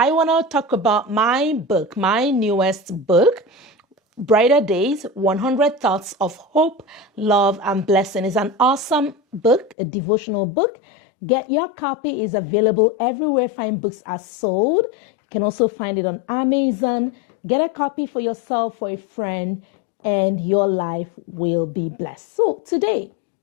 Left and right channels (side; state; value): right; drops out; at 9.8 s